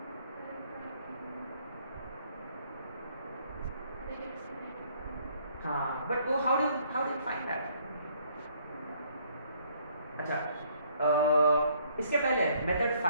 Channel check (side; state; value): both; inverted; correlation -0.63